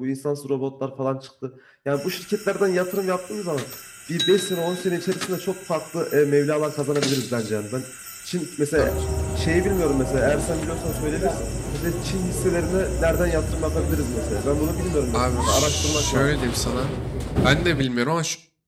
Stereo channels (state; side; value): identical; both; correlation 1.00